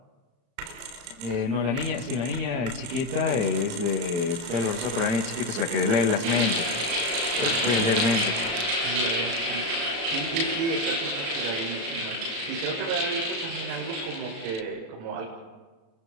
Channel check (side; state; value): left; late; 35 ms